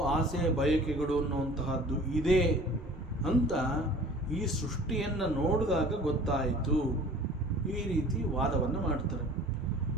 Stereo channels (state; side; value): normal; both; correlation 0.46